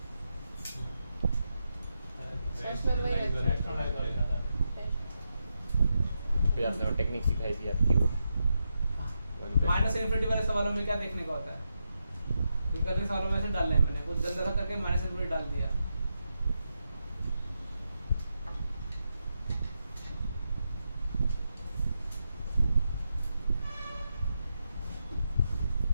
फिर आपने वो टेक्निक सिखाई थी आपकी वो माइनस इनफिनिटी वाले सवालों में क्या देखने का होता है करने सवालों में ऐसे डालना है मैंने कुछ गंदा सा करके माइनस इनफिनिटी डाल दिया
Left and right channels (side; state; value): both; inverted; correlation -0.85